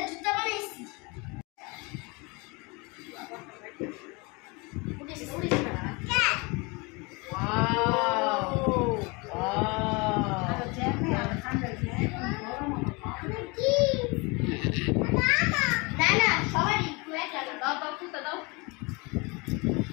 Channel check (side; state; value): right; quieter; 27.7 dB